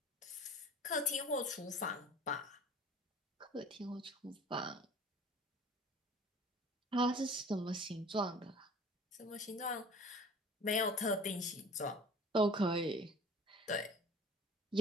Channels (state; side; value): normal; both; correlation 0.48